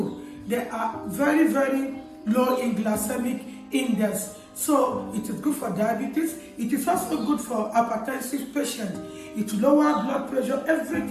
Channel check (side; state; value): both; identical; correlation 1.00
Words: They are very, very low in glycemic index. So it is good for diabetes. It is also good for hypertensive patients. It lower blood pressure.